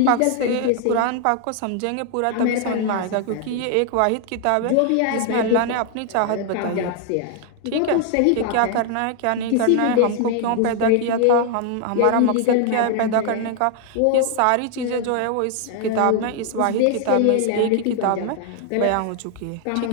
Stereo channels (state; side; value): different; both; correlation 0.00